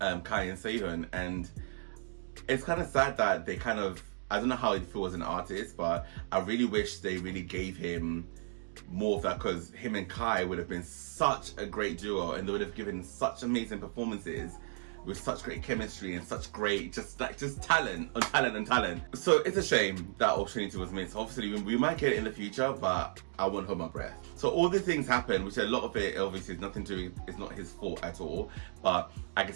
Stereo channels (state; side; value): silent; left; digital silence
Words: Sehun, and it's kind of sad that they I don't know how it feels as an artist, but I really wish they really gave him more of that, because him and Kai would have been such a great duo, and they would have given such amazing performances with such great chemistry and such great just talent on talent and talent. So it's a shame that opportunity was missed. Obviously we might get it in the future, but I won't hold my breath. So all these things happen, which a lot of it obviously is nothing to do, it's not his fault at all, but I can